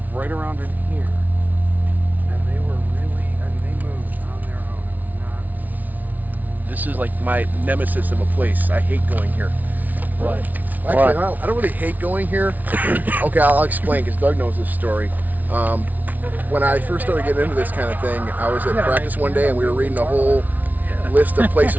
right around in here, and they were really. I mean, they moved on their own. It was not. This is like my nemesis of a place. I hate going here. What? Actually, I don't really hate going here. Okay, I'll explain because Doug knows this story. When I first started getting into this kind of thing, I was at practice one day and we were reading a whole list of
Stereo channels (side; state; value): left; late; 0.077 ms